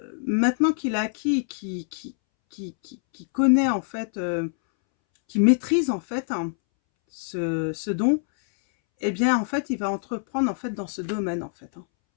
qu'il a acquis, qui connaît, en fait, qui maîtrise, en fait, hein, ce don, eh bien, en fait, il va entreprendre, en fait, dans ce domaine, en fait, hein.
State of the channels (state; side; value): silent; right; 62 dB below the other